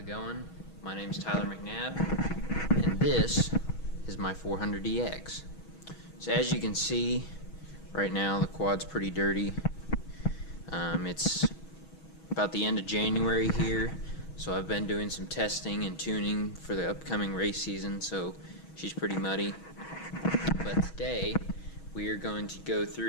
going? My name's Tyler McNabb, and this is my 400DX. So as you can see, right now the quad's pretty dirty. It's about the end of January here, so I've been doing some testing and tuning for the upcoming race season, so she's pretty muddy. But today, we are going to go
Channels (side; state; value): right; late; 6.2 ms